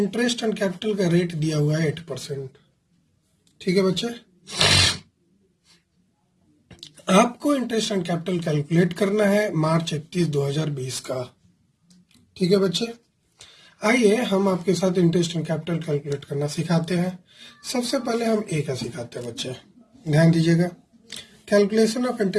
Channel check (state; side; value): identical; both; correlation 1.00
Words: एंड कैपिटल का रेट दिया हुआ है 8%। ठीक है बच्चे, आपको इंटरेस्ट एंड कैपिटल कैलकुलेट करना है मार्च 31, 2020 का। ठीक है बच्चे, आइए हम आपके साथ इंटरेस्ट एंड कैपिटल कैलकुलेट करना सिखाते हैं। सबसे पहले हम ए का सिखाते हैं बच्चे, ध्यान दीजिएगा। Calculation of